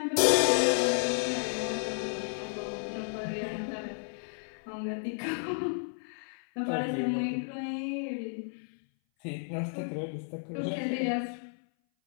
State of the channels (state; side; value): silent; right; 56 dB below the other